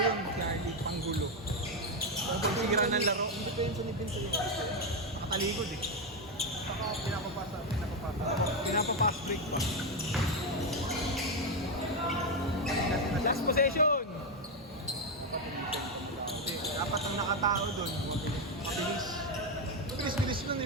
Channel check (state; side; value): normal; both; correlation 0.07